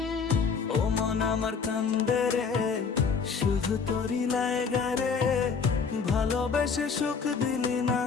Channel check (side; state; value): right; quieter; 5.6 dB